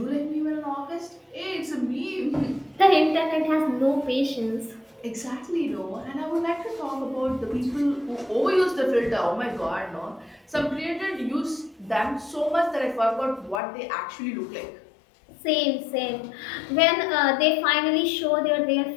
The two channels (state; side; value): drops out; right; at 13.6 s